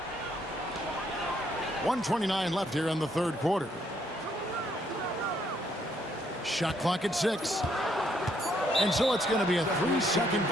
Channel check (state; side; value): normal; both; correlation 0.71